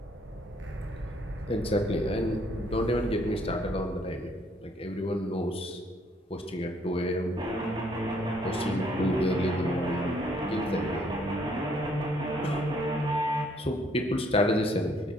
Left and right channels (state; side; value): normal; both; correlation 0.66